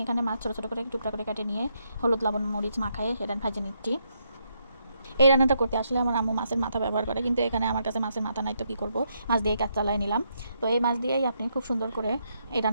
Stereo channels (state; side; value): inverted; both; correlation -0.77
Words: এখানে মাছ ছোটো ছোটো করে টুকরা করে কেটে নিয়ে হলুদ লবণ মরিচ মাখায়ে সেটা ভেজে নিচ্ছি। এই রান্নাটা করতে আসলে আমার আম্মু মাছের মাথা ব্যবহার করে, কিন্তু এখানে আমার কাছে মাছের মাথা নাই, তো কী করবো, মাছ দিয়ে কাজ চালাই নিলাম। তো এই মাছ দিয়েই আপনি খুব সুন্দর করে এই